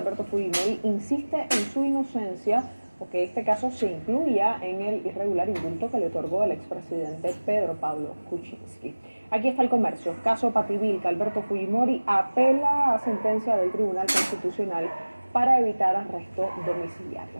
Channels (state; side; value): inverted; both; correlation -1.00